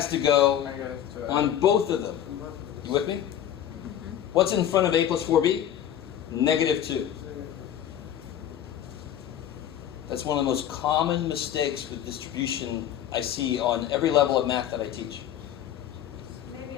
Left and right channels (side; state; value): right; quieter; 10.6 dB